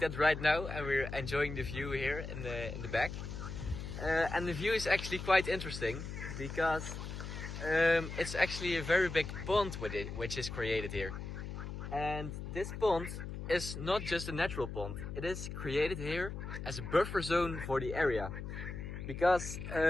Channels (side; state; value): left; noise; hum, 7 dB below the sound